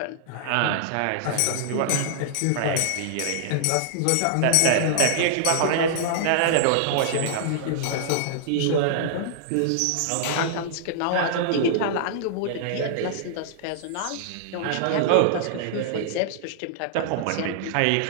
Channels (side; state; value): both; different; correlation -0.01